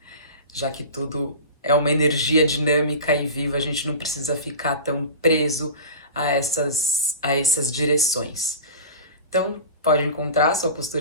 Já que tudo é uma energia dinâmica e viva, a gente não precisa ficar tão preso a essas direções. Então, pode encontrar a sua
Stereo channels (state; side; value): inverted; both; correlation -0.32